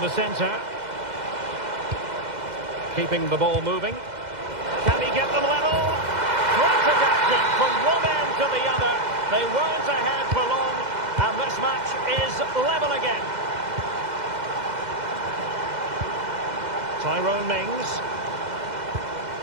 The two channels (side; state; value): left; late; 2.0 ms